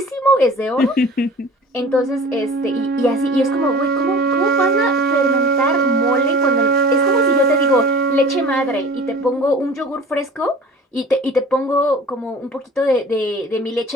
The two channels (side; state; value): both; normal; correlation 0.42